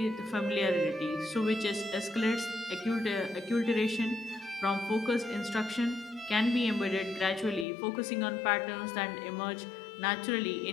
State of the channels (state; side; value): drops out; right; at 7.7 s